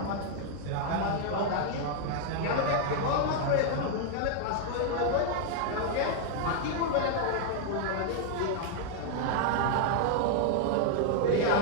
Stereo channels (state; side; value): different; both; correlation 0.00